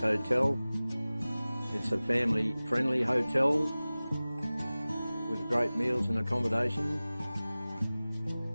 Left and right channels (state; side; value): inverted; both; correlation -0.98